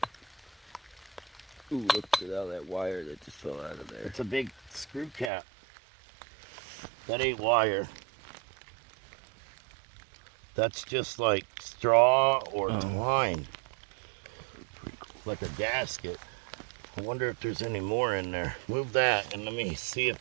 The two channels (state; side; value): drops out; left; at 5.3 s